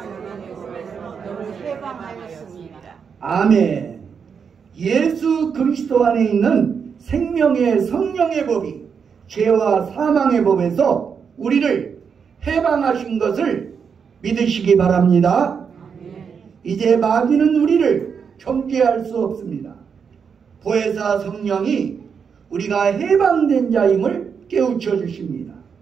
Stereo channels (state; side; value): quieter; left; 6.5 dB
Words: 너를 해방하였습니다. 아멘. 예수 그리스도 안에 있는 생명의 성령의 법이 죄와 사망의 법에서 우리를 해방하신 것을 믿으시기 바랍니다. 이제 마귀는 우리를 정죄할 수 없습니다. 보혜사 성령이 우리가 해방된 자임을 깨우쳐 주십니다.